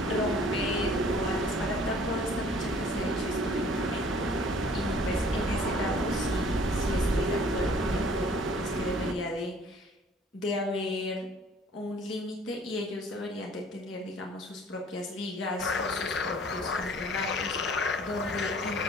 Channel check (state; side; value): normal; both; correlation 0.53